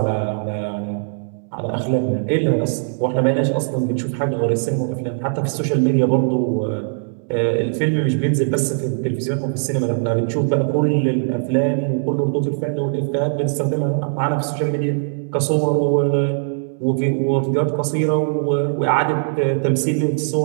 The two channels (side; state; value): left; silent; digital silence